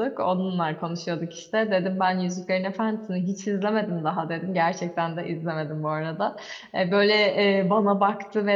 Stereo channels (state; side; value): identical; both; correlation 1.00